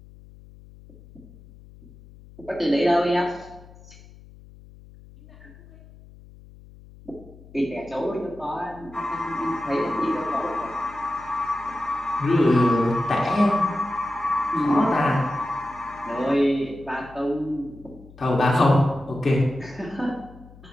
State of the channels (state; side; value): noise; left; hum, 21 dB below the sound